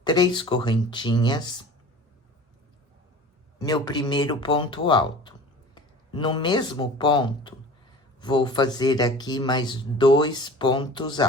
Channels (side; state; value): both; normal; correlation 0.42